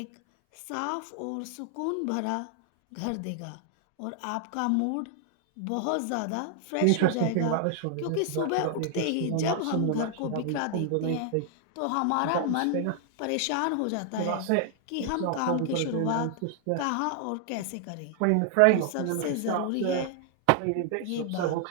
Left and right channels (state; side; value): different; both; correlation 0.00